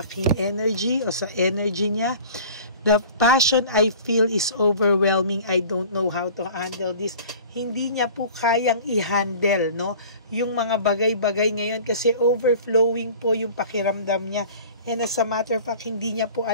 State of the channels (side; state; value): both; inverted; correlation -0.44